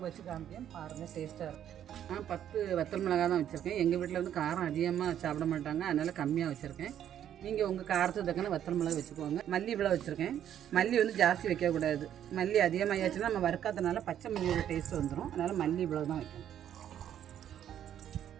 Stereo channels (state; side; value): quieter; left; 10.3 dB